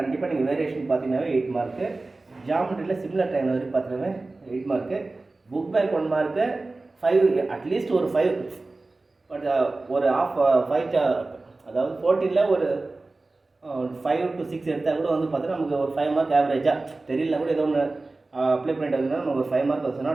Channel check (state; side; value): quieter; left; 3.3 dB